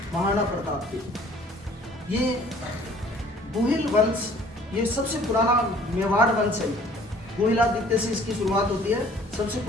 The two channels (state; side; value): normal; both; correlation 0.54